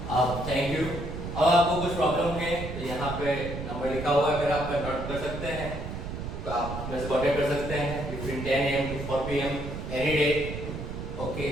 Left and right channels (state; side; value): noise; right; rumble, 7 dB below the sound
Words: आप थैंक यू। अब आपको कुछ प्रॉब्लम है तो यहाँ पे नंबर लिखा हुआ है, अगर आप नोट कर सकते हैं तो आप मेरे से कांटेक्ट कर सकते हैं between 10 AM to 4 PM any day. Okay,